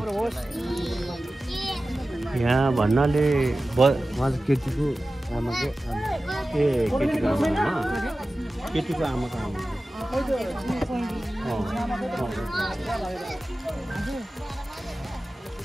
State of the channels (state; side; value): normal; both; correlation 0.95